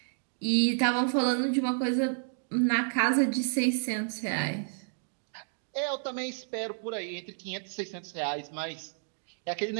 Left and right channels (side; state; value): left; silent; digital silence